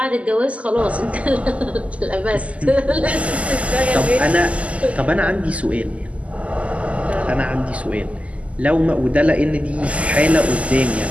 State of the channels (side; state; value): left; late; 0.066 ms